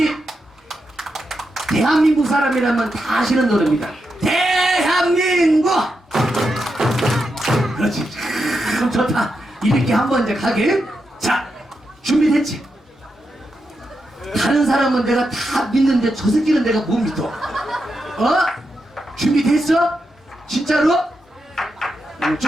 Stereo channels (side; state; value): both; normal; correlation 0.86